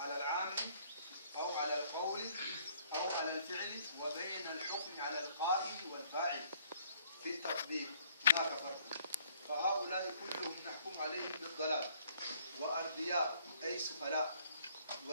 العام أو على القول أو على الفعل وبين الحكم على القائل والفاعل في التطبيق. هناك فرق. فهؤلاء كلهم نحكم عليهم بالضلال وأرضياء أي سفلاء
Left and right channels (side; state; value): both; inverted; correlation -0.63